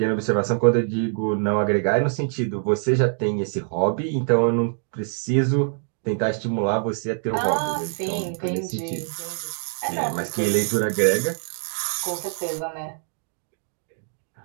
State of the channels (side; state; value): left; silent; digital silence